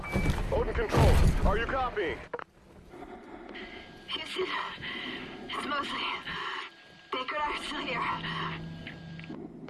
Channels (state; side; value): identical; both; correlation 1.00